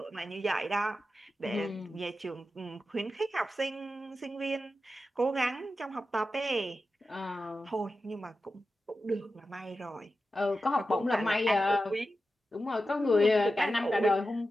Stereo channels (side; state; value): both; normal; correlation 0.91